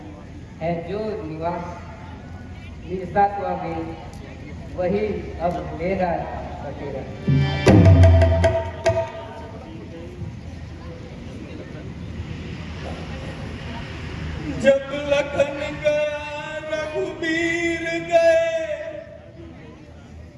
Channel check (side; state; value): both; identical; correlation 1.00